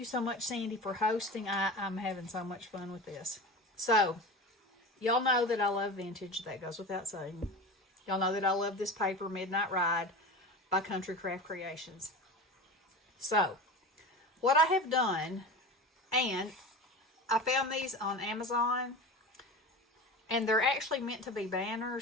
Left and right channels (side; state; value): both; normal; correlation 0.30